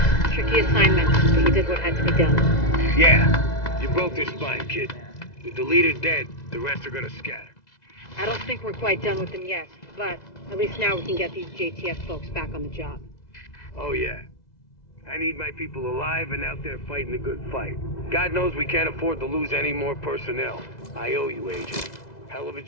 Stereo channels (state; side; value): late; right; 2.0 ms